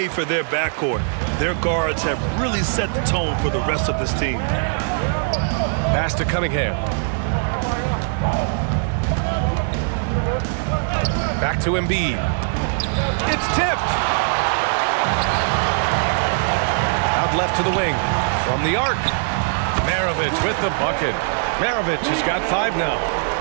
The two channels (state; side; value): silent; left; 62 dB below the other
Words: for their backcourt. Their guards have really set the tone for the rest of this team. Pass to Cunningham. Back to Embiid. It's tipped. Out left to the wing. From the arc. Maravich with the bucket. Maravich has got 5 now.